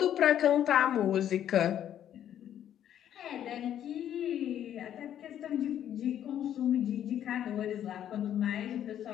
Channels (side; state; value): right; quieter; 10.5 dB